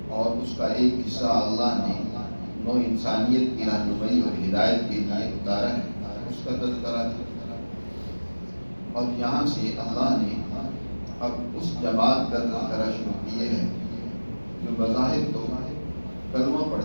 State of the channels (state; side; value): inverted; both; correlation -1.00